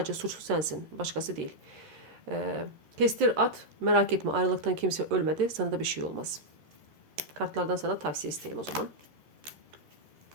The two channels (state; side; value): late; left; 13 ms